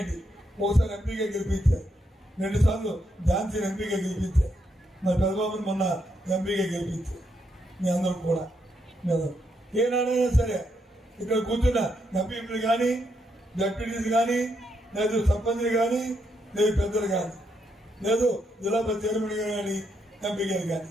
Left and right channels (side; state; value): both; normal; correlation 0.79